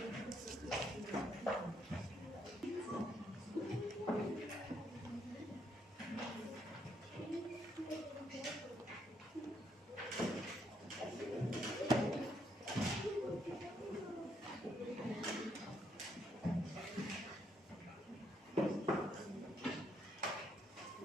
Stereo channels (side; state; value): both; normal; correlation 0.74